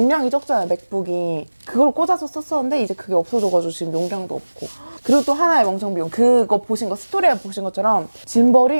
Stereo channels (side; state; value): both; inverted; correlation -1.00